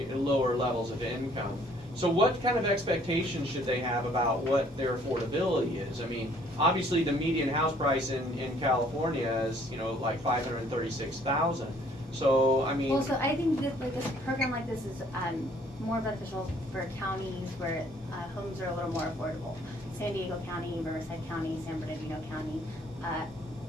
levels of income. So what kind of expectations should they have about what their affordability is? I mean, obviously the median house price in California is, like $536,000. So, I mean... Well, so I think that this program like this is more beneficial for counties where homes are a little more affordable. San Diego County, Riverside County, San Bernardino County.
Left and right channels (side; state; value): both; normal; correlation 0.60